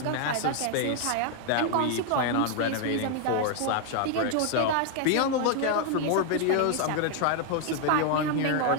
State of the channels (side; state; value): both; different; correlation 0.00